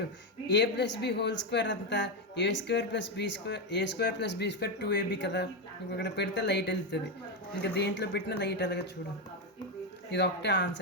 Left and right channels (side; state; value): both; normal; correlation 0.08